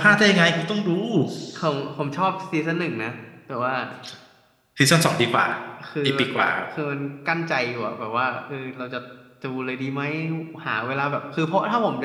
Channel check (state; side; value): identical; both; correlation 1.00